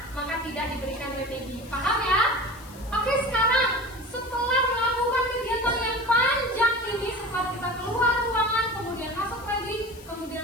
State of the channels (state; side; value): noise; left; hiss, 21 dB below the sound